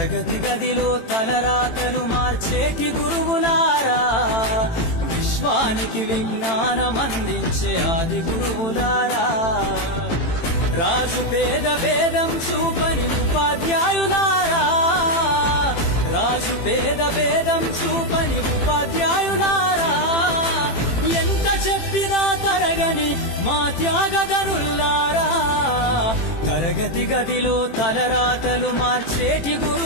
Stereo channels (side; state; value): right; late; 18 ms